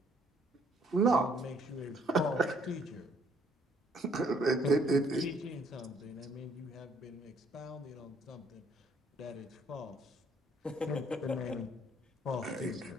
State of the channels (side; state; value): both; normal; correlation 0.65